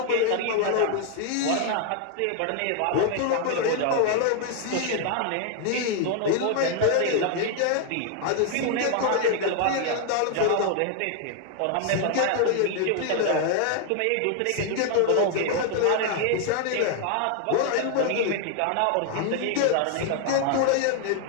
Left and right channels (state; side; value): different; both; correlation 0.00